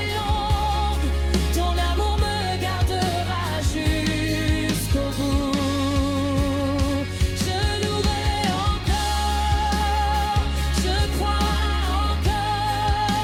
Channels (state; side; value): identical; both; correlation 1.00